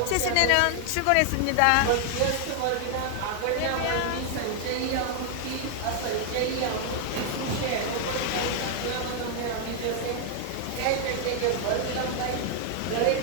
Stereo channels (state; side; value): different; both; correlation 0.00